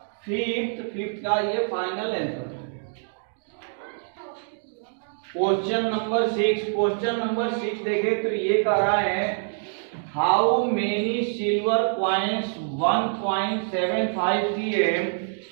5th का ये फाइनल आंसर। क्वेश्चन नंबर 6 देखे तो ये कह रहा है, how many silver coins 1.75 cm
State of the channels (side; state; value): left; silent; digital silence